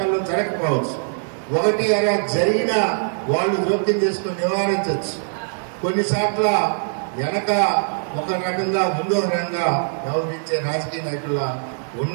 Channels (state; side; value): silent; left; 63 dB below the other